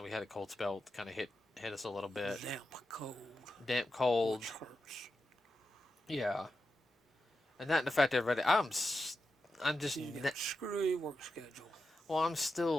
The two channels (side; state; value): both; normal; correlation 0.89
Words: we had a cold spell. Kind of hit us a little bit. Damp cold, Damp cold. which hurts. Yeah, and that in fact, everybody. I'm just. You got a screwy work schedule. Well, I'm